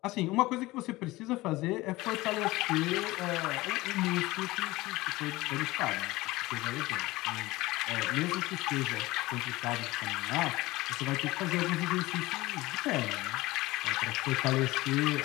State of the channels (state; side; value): quieter; right; 19.6 dB